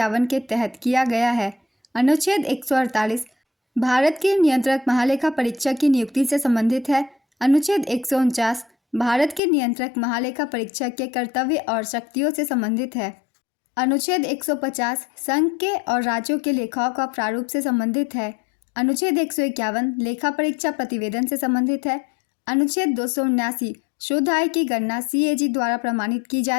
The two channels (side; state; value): right; drops out; at 9.4 s